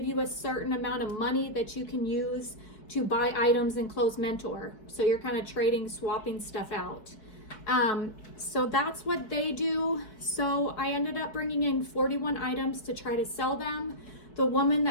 you a certain amount of money that you can use to buy items in Clothes Mentor. So you're kind of trading, swapping stuff out. So that's what they do. So I ended up bringing in 41 items to try to sell them. The woman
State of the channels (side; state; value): right; late; 4.7 ms